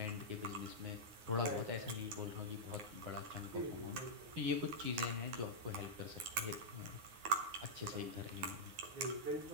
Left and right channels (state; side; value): late; left; 9.5 ms